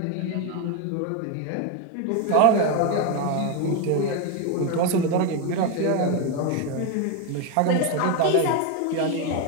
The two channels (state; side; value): different; both; correlation 0.02